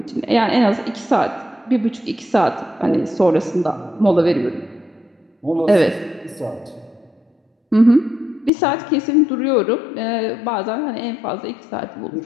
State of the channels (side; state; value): right; drops out; at 8.5 s